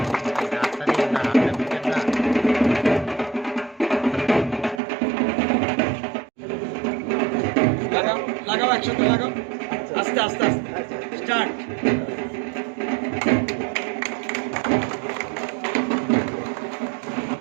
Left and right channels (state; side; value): drops out; left; at 4.8 s